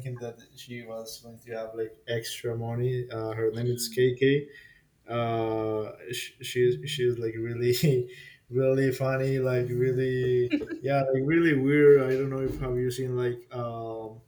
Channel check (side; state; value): both; identical; correlation 1.00